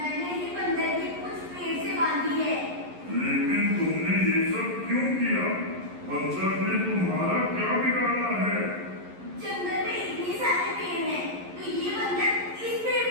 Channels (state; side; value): late; left; 11 ms